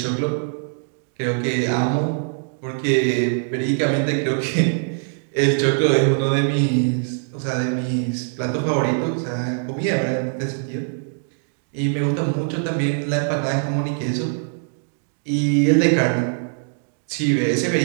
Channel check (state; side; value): silent; left; digital silence